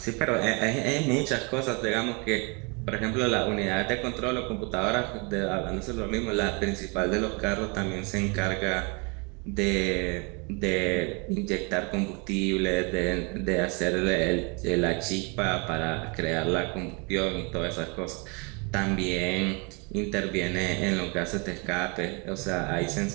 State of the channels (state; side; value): quieter; left; 31.0 dB